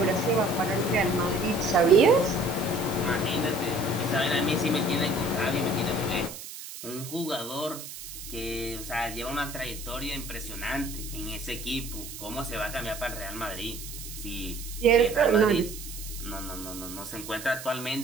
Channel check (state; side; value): noise; right; hiss, 11 dB below the sound